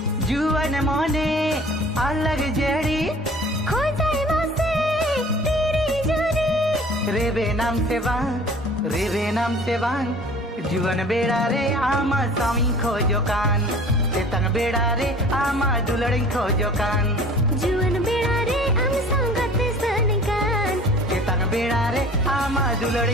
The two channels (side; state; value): both; normal; correlation 0.46